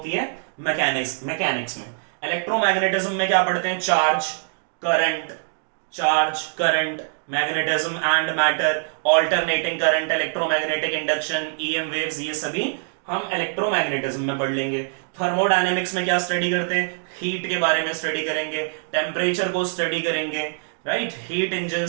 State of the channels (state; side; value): silent; left; 63 dB below the other